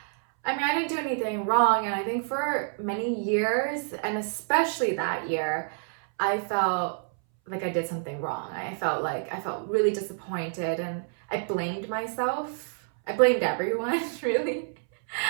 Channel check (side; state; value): left; silent; 59 dB below the other